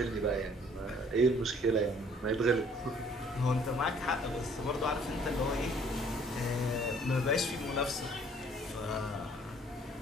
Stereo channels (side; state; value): both; normal; correlation 0.58